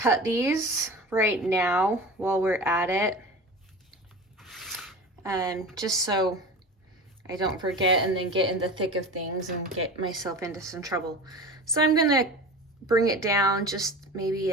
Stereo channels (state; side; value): normal; both; correlation 0.33